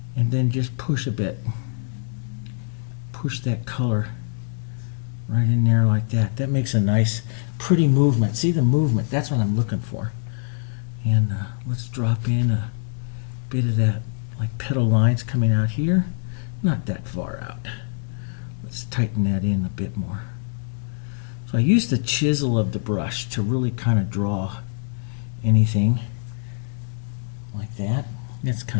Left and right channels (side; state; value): right; silent; digital silence